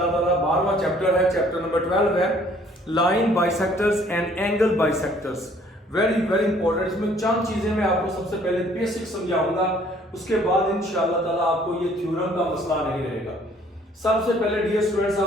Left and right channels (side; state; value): both; normal; correlation 0.59